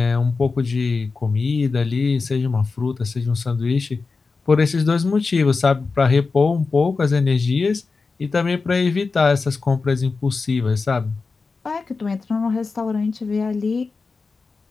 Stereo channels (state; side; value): quieter; right; 4.3 dB